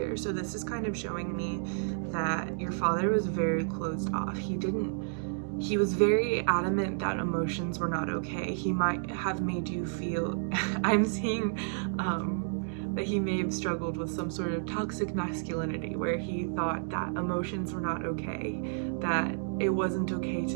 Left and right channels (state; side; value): silent; left; digital silence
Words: So this is kind of showing me that your father was very closed off. He was very adamant that emotions were not okay. He might have made you feel, I'm seeing that he may have struggled with some sort of toxic masculinity, where he thought that emotions were not okay, that it wasn't okay